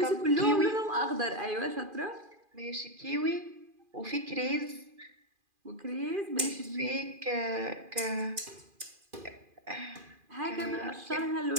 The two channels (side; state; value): left; late; 2.4 ms